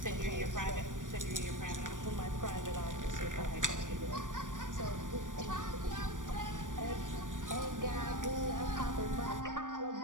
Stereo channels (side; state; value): left; late; 0.87 ms